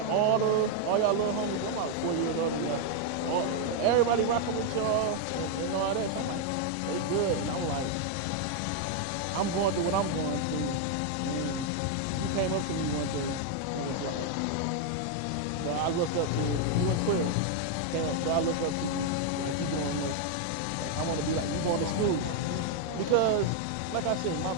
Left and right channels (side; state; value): both; different; correlation 0.00